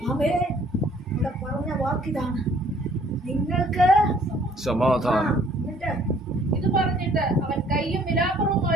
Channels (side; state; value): both; normal; correlation 0.59